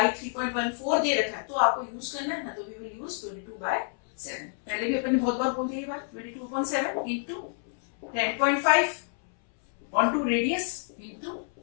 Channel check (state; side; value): silent; right; 59 dB below the other